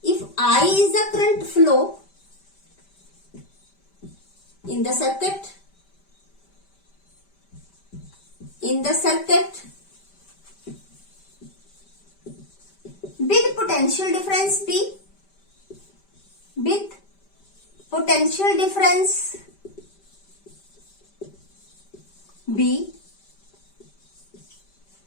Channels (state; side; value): late; right; 5.1 ms